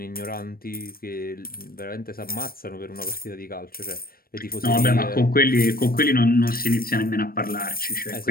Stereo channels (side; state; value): right; late; 0.43 ms